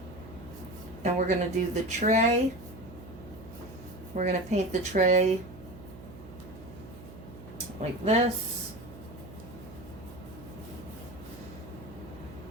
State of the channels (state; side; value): noise; right; hum, 16 dB below the sound